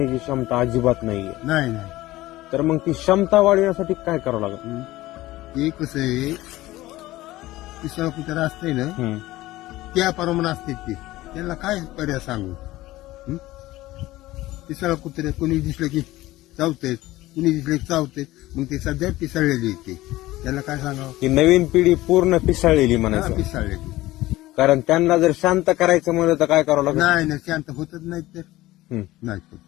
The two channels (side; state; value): right; quieter; 17.3 dB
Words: क्षमता अजिबात नाहीये. नाही नाही तर मग ती क्षमता वाढवण्यासाठी काय करावं लागेल? ते कसं आहे, तिसरा कुत्रा असते ना त्या प्रमाणे असते ते, त्यांना काय पर्याय सांगू. तिसरा कुत्रे कोणी दिसलं की चावतेत, कुणी दिसलं की चावतेत, मग ते सध्या पिसाळलेली येते, त्याला काय सांगावं. की नवीन पिढी पूर्ण पिसाळलेली म्हणायचं. पिसाळलेली. कारण त्यांना जर शांत करायचं म्हणलं तर काय करावं लागेल? नाही नाही, शांत होतच नाही तर नाही होत